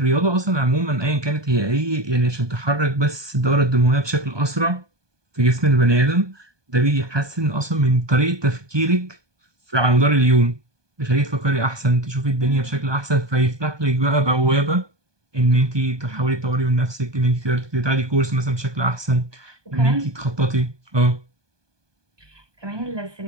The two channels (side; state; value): left; late; 1.2 ms